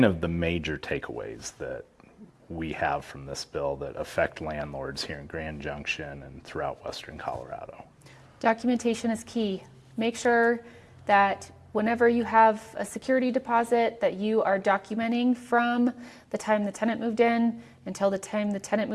of the major takeaways that we have from this bill that affect landlords here in Grand Junction and throughout Western Colorado? Documentation is key. Make sure that whenever you have a security deposit that you are documenting from the time the tenant moved in until the time the tenant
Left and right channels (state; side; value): identical; both; correlation 1.00